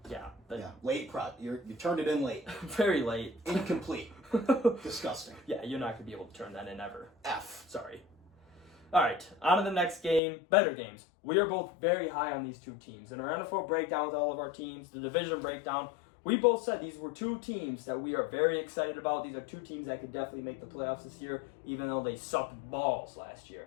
Yeah. Late You turned it in late. Very late. Incomplete. Disgusting. Yeah, you're not going to be able to turn that in ever. F. Sorry. All right, on to the next game. Better games. We are both very high on these two teams. In our NFL breakdown with all of our teams, the division breakdown, we both said these were two teams that we are very excited about. These are two teams that could definitely make the playoffs this year, even though they sucked balls last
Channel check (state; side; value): drops out; right; at 10.2 s